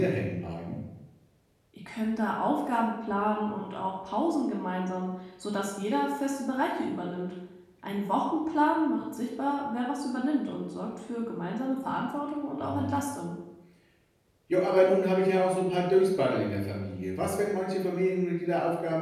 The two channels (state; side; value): identical; both; correlation 1.00